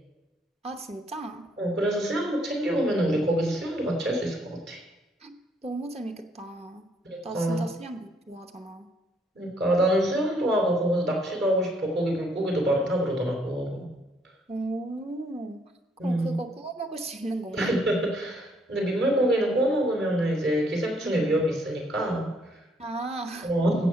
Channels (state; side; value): normal; both; correlation 0.68